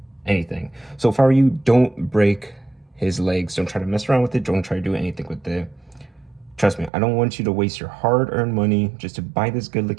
anything. So if I were you, don't break his legs. Don't try to mess around with it. Don't try to do anything with it. Trust me, I don't want you to waste your hard-earned money just to buy this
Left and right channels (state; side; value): drops out; left; at 6.9 s